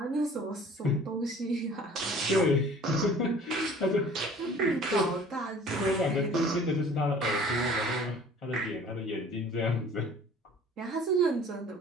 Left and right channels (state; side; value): normal; both; correlation 0.49